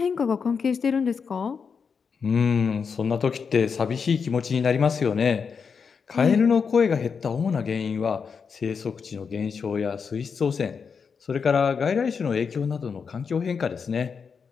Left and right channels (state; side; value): quieter; right; 5.9 dB